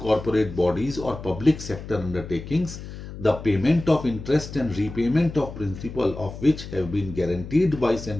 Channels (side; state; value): left; noise; hum, 11 dB below the sound